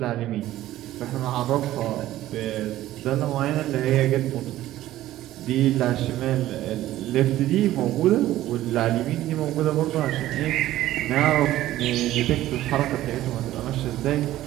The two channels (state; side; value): quieter; left; 14.5 dB